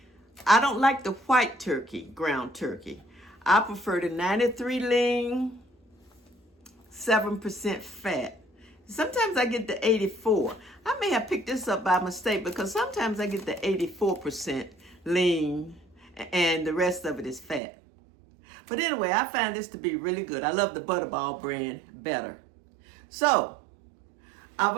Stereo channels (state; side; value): drops out; left; at 17.6 s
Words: I don't like the white turkey, ground turkey. I prefer the 93 lean, 7% fat. Sometimes I get the 84. I may have picked this up by mistake because sometimes I get the 84% lean and the rest of it is fat. But anyway, I find this to be really good. I love the butterball brand better. So, I've